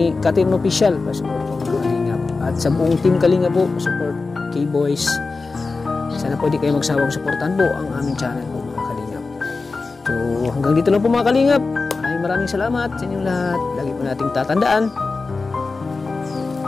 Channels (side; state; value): right; quieter; 4.0 dB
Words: Katin Official, pa-support po mga kalingap. At sa buong team Kalingap po, support K-Boys. Sana po di kayo magsawang suportahan po ang aming channel po mga kalingap. So hanggang dito lang po mga kalingap. Maraming salamat sa inyong lahat. Lagi po nating tatandaan